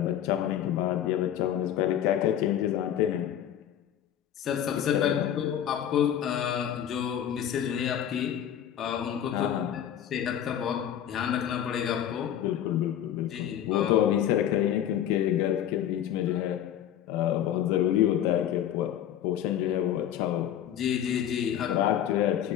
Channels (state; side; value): quieter; right; 10.4 dB